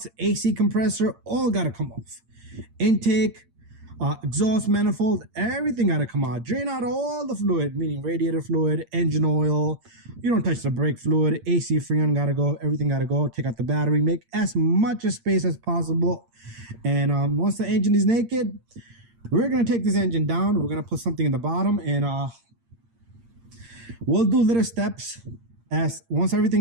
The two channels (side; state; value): left; late; 8.7 ms